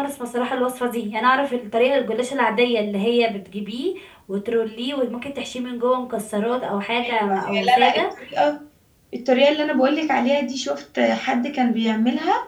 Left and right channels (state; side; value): identical; both; correlation 1.00